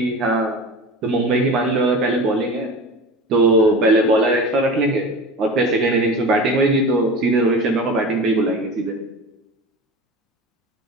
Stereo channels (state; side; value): normal; both; correlation 0.32